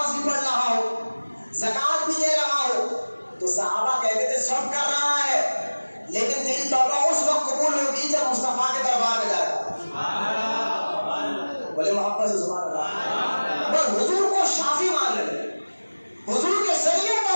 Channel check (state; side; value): inverted; both; correlation -1.00